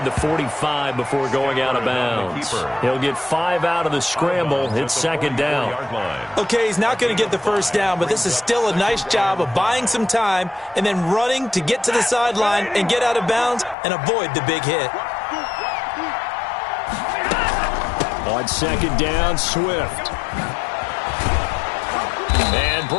the 45 before going out of bounds. He'll get 5 out of the scramble. It's 2nd down. Okay, he's not going to get the first down, but this is still a nice job of buying some time and then running to get to the sideline and get out of bounds and avoid the big hit. On 2nd down, Swift. And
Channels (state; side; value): drops out; right; at 13.8 s